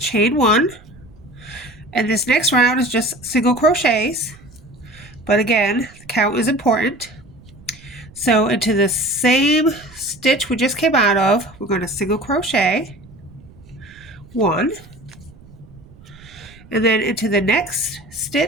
chain 1. And this next round is just single crochets. But again, the count is important. So into the same stitch we just came out of, we're going to single crochet 1. And then into the next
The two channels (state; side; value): noise; right; rumble, 23 dB below the sound